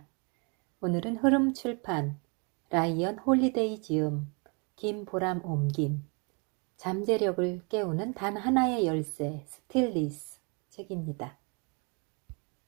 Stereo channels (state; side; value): quieter; left; 33.6 dB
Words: 오늘은 흐름출판 라이언 홀리데이 지음 김보람 옮김 잠재력을 깨우는 단 하나의 열쇠 스틸리스 책입니다.